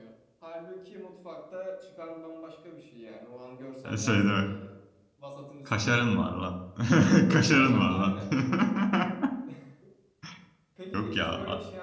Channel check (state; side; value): identical; both; correlation 1.00